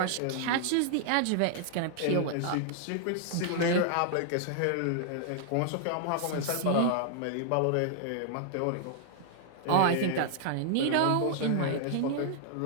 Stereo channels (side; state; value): both; different; correlation -0.01